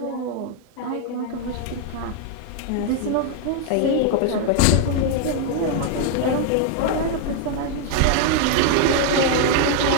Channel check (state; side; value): different; both; correlation 0.00